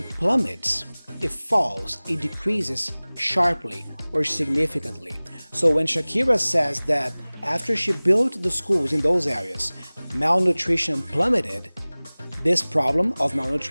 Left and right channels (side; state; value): both; inverted; correlation -1.00